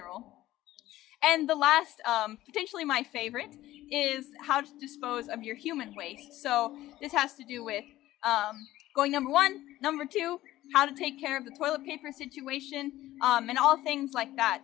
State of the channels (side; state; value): right; quieter; 15.4 dB